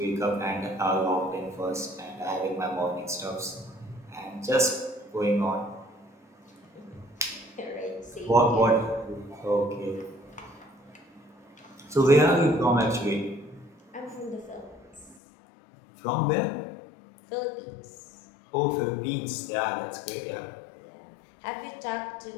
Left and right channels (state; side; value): drops out; right; at 15.2 s